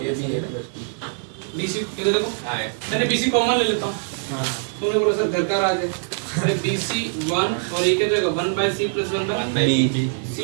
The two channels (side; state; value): left; silent; 64 dB below the other